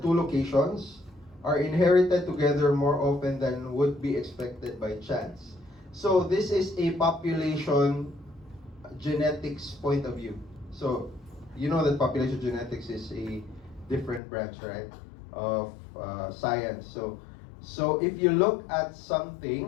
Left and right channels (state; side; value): drops out; right; at 14.2 s